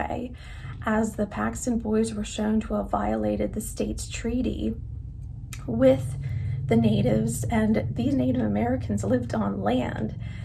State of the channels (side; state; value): both; identical; correlation 1.00